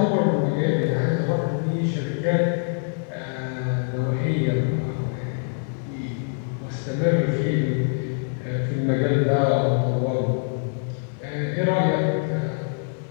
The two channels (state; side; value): silent; right; digital silence